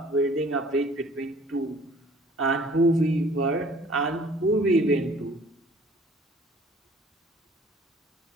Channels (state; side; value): normal; both; correlation 0.52